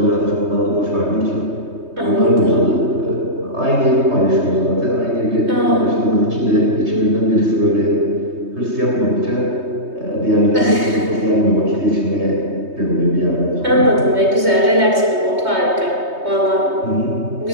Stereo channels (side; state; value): left; late; 3.2 ms